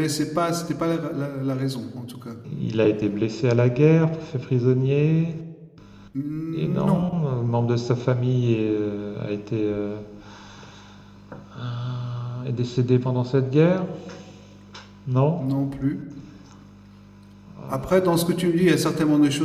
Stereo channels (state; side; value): identical; both; correlation 1.00